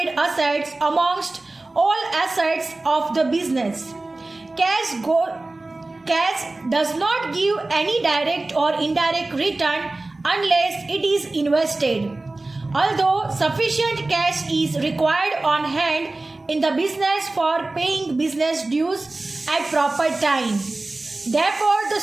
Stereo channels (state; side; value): quieter; left; 3.0 dB